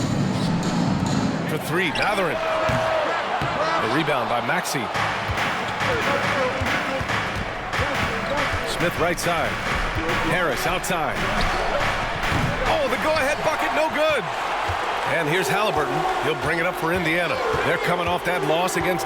For three, Matherin. The rebound by Maxey. Smith right side. Harris outside. Oh, the go-ahead bucket, no good. And here's Hailburton. He'll bring it up for Indiana. They're coming off that loss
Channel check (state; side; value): identical; both; correlation 1.00